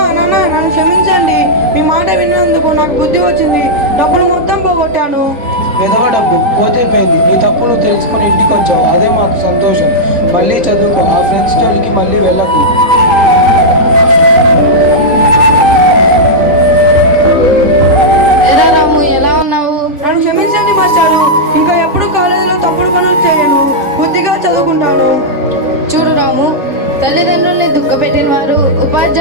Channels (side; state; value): left; late; 3.8 ms